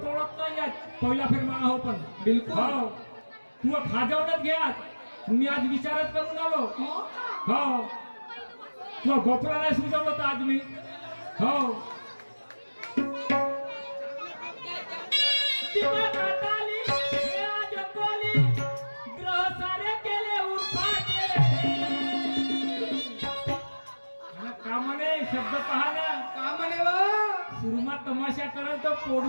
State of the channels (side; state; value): both; inverted; correlation -1.00